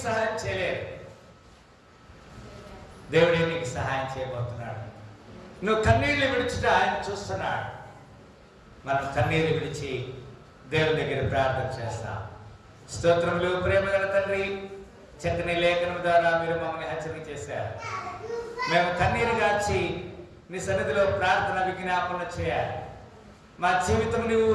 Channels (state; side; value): identical; both; correlation 1.00